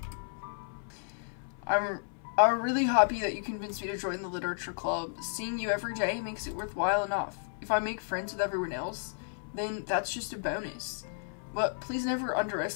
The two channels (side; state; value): right; silent; 56 dB below the other